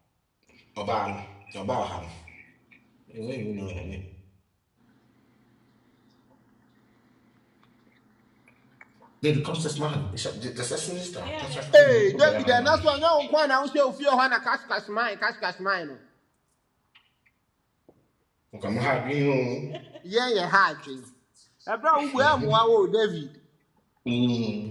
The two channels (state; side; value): identical; both; correlation 1.00